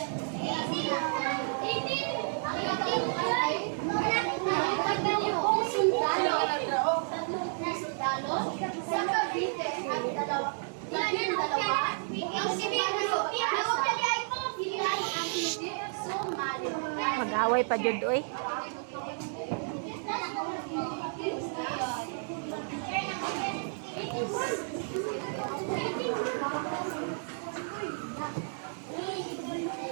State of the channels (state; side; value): silent; left; digital silence